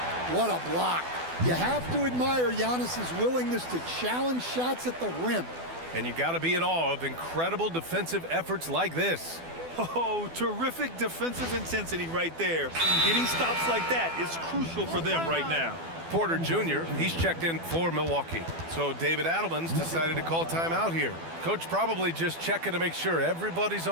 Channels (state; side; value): late; left; 12 ms